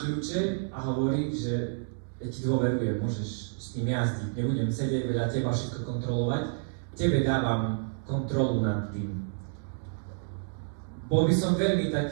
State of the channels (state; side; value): silent; left; digital silence